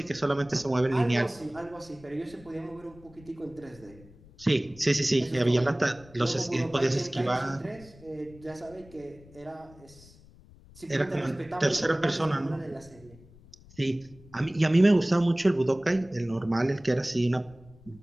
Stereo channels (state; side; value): noise; left; rumble, 23 dB below the sound